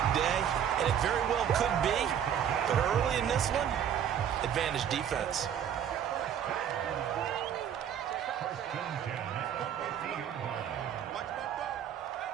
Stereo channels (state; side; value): quieter; left; 9.1 dB